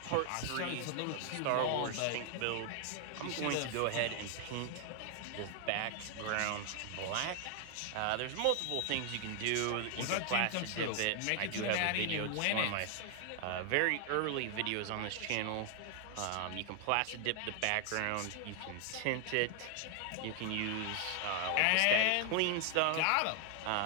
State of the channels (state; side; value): different; both; correlation 0.00